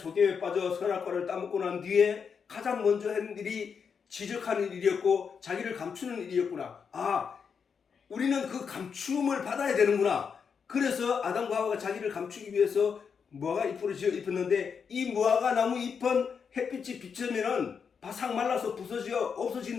빠져 선악과를 따먹고 난 뒤에 가장 먼저 한 일이 지적하는 일이었고 자기를 감추는 일이었구나. 우리는 그 감춤을 받아야 되는구나. 그래서 아담과 하와가 자기를 감추기 위해서 무화과 잎으로 지어 입혔는데 이 무화과 나무 잎은 햇빛이 비치면은 바싹 말라서 부서져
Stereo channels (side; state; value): right; quieter; 6.3 dB